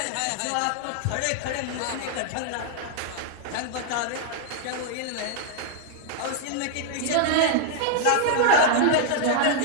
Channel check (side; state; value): both; different; correlation 0.00